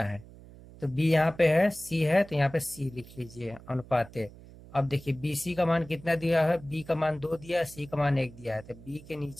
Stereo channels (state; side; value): noise; right; hum, 19 dB below the sound